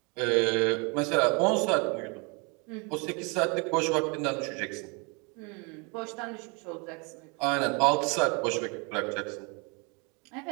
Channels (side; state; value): left; quieter; 32.1 dB